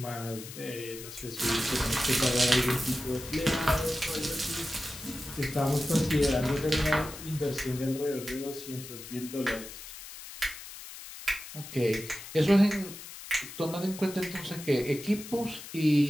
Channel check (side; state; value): left; noise; hiss, 13 dB below the sound